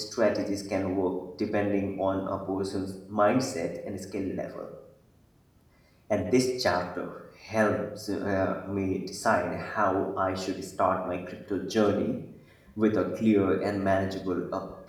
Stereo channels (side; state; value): both; identical; correlation 1.00